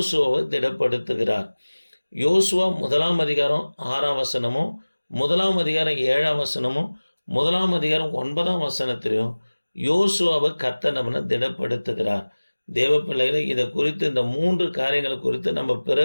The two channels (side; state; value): both; inverted; correlation -1.00